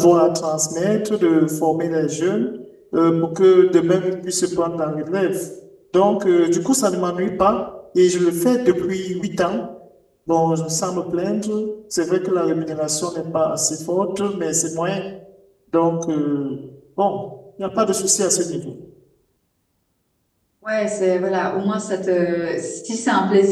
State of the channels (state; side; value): identical; both; correlation 1.00